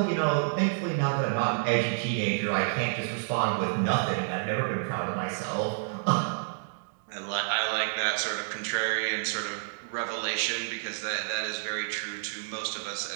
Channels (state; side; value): silent; left; digital silence